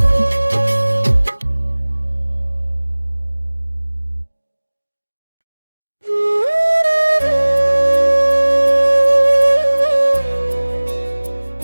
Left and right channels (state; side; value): inverted; both; correlation -1.00